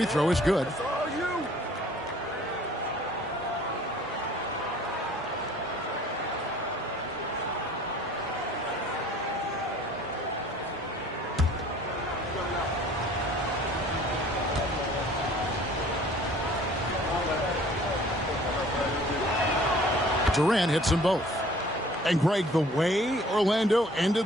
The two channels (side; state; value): both; normal; correlation 0.52